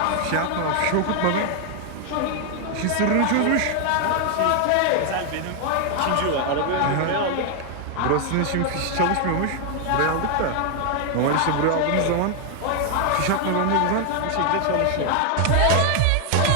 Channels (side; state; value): both; different; correlation 0.00